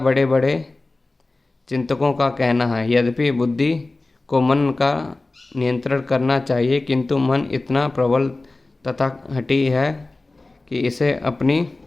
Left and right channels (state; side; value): quieter; right; 3.1 dB